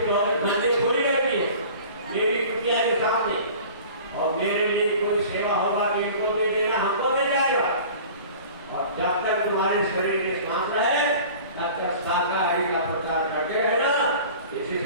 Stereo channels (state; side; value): inverted; both; correlation -0.43